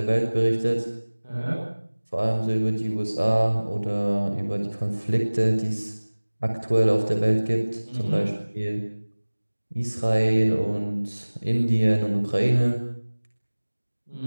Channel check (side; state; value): both; inverted; correlation -1.00